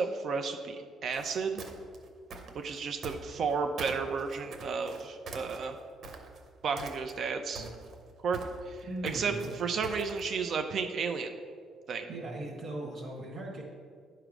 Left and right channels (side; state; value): left; quieter; 4.5 dB